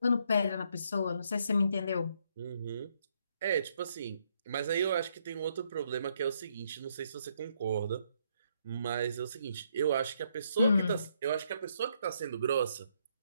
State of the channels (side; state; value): both; inverted; correlation -0.73